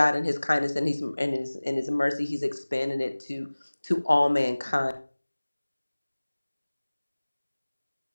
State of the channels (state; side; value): inverted; both; correlation -1.00